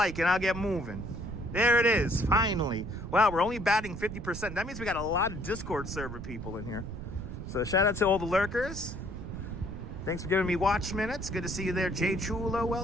and I'll get moving. There it is, finally. Wow, we're only batting 50%. That means we got a lot of Discord server people in here. So shout out to all the lurkers. Thanks for giving me watch minutes. Good to see you there, Jay Chulo.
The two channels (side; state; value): right; noise; rumble, 8 dB below the sound